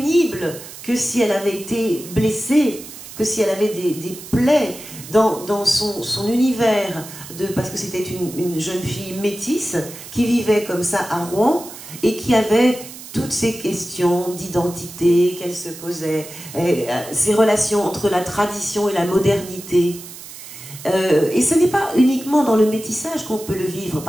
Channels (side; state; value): right; noise; hiss, 14 dB below the sound